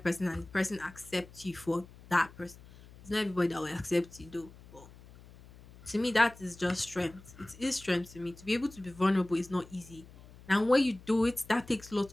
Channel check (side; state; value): left; noise; hum, 21 dB below the sound